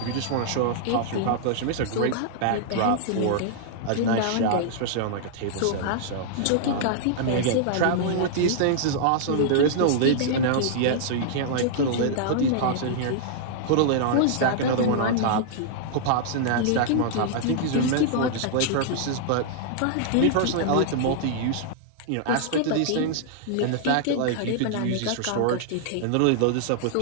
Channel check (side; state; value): both; different; correlation -0.01